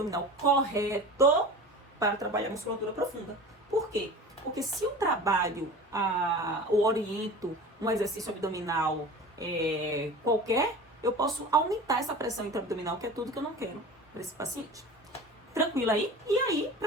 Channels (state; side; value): normal; both; correlation 0.36